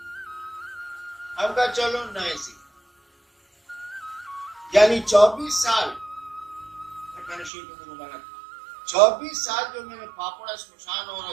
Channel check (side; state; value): left; drops out; at 7.5 s